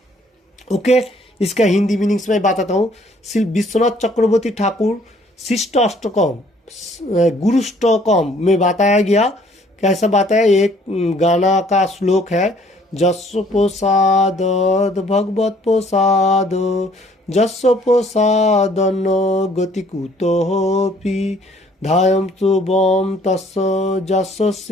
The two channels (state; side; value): normal; both; correlation 0.60